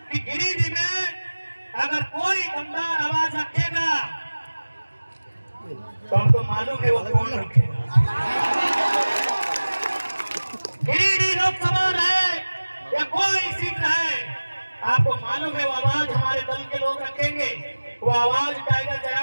कि गिरिडीह में अगर कोई दमदार आवाज रखेगा तो आपको मालूम है वो कौन रखेगा। गिरिडीह लोकसभा रहे या कोई सीट रहे, आपको मालूम है वो आवाज हमारे दल के लोग रखेंगे, वो आवाज टाइगर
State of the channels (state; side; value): inverted; both; correlation -1.00